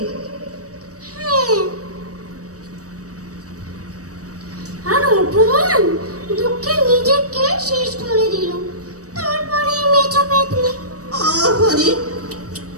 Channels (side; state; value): left; late; 0.66 ms